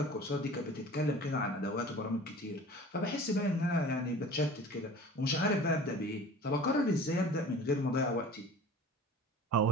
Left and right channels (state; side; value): normal; both; correlation 0.42